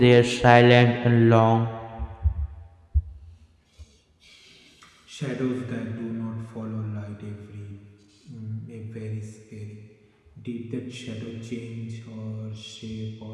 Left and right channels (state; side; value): identical; both; correlation 1.00